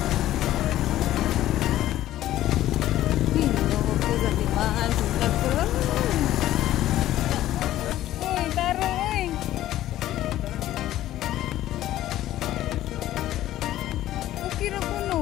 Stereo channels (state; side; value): quieter; right; 13.8 dB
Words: Hindi ko sa timaan. Sundag ko lang. Uy, taro, uy. Okay na po,